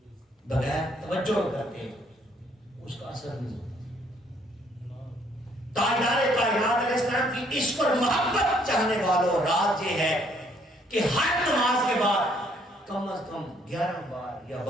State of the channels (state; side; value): normal; both; correlation 0.66